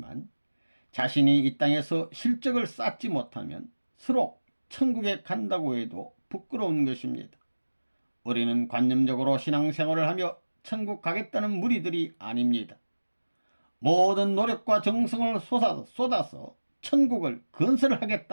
자신이 이 땅에서 실적을 쌓지 못하면 서로 천국에 간다고 해도 부끄러운 것입니다. 우리는 관념적으로 신앙생활을 하며 천국 가겠다는 무리들이 아닙니다. 모든 노력과 정성을 쏟아서 천국을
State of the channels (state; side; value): inverted; both; correlation -1.00